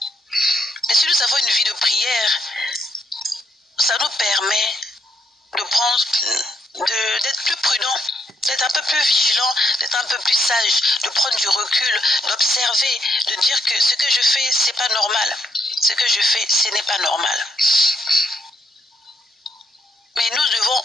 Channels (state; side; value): normal; both; correlation 0.76